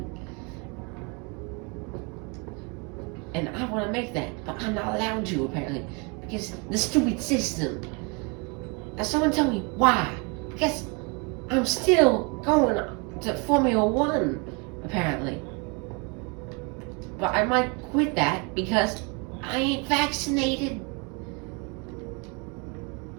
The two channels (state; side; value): quieter; left; 32.0 dB